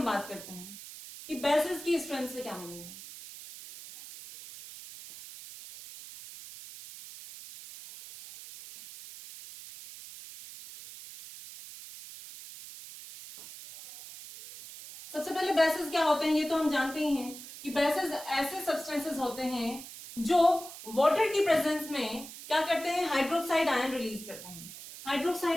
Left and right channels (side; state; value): right; noise; hiss, 14 dB below the sound